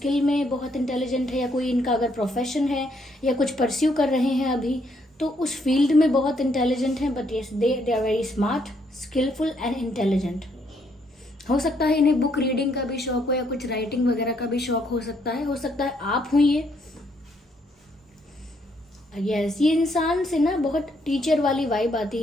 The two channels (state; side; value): normal; both; correlation 0.72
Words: में बहुत इंटेलिजेंट है, या कोई इनका अगर प्रोफेशन है या कुछ परस्यू कर रहे हैं अभी तो उस फील्ड में बहुत इंटेलिजेंट हैं। But yes they are very smart, skilful and intelligent. हो सकता है इन्हें बुक रीडिंग का भी शौक हो या कुछ राइटिंग वगैरह का भी शौक हो सकता है आप हुई ये। यस, ये इंसान से ना बहुत टीचर वाली वाइब आती